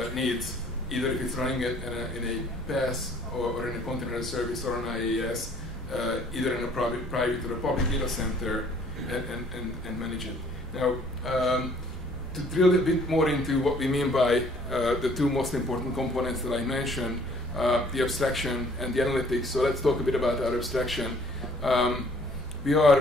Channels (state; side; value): normal; both; correlation 0.58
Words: needs, either if it's running it in a PaaS or in a container service or an IaaS, either in a private or a public data center, and manage it. Now, to drill a bit more into what we mean by the two most important components that I mentioned, the abstraction and the analytics. So let's talk a bit about our abstraction. We